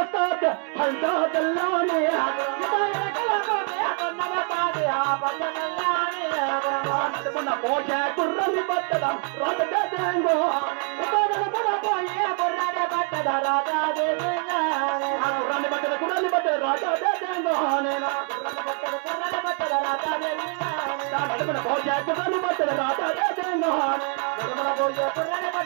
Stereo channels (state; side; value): quieter; left; 39.5 dB